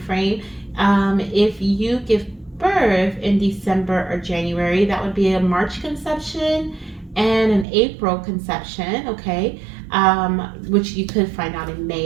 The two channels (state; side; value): drops out; left; at 7.7 s